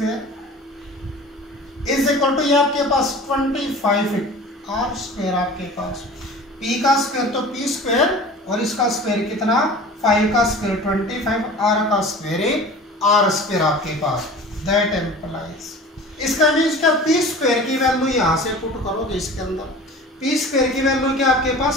is equal to, ये आपके पास 25 आर स्क्वायर, आपके पास पी का स्क्वायर तो पी स्क्वायर, और इसका स्क्वायर कितना, 5 का स्क्वायर 25, आर का स्क्वायर आर स्क्वायर आपके पास। दैट एम्प्लाइज, इसका मीन्स क्या, पी स्क्वायर की वैल्यू यहां से पुट करोगे इसके अंदर, पी स्क्वायर की वैल्यू क्या आपके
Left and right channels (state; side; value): normal; both; correlation 0.40